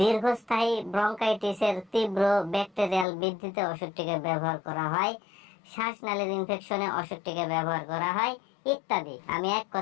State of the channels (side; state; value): right; drops out; at 3.1 s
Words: ব্রঙ্কাইটিসের তীব্র ব্যাকটেরিয়াল বৃদ্ধিতে ওষুধটিকে ব্যবহার করা হয়, শ্বাসনালীর ইনফেকশনে ওষুধটিকে ব্যবহার করা হয় ইত্যাদি। আমি এক